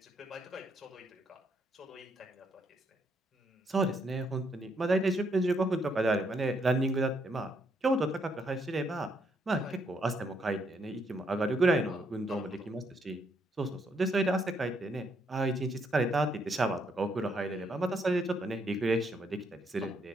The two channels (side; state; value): both; normal; correlation 0.74